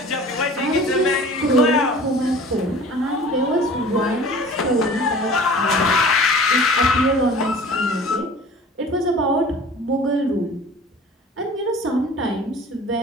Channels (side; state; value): both; normal; correlation 0.44